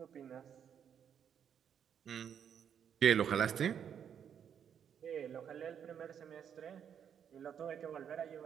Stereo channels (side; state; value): left; quieter; 8.3 dB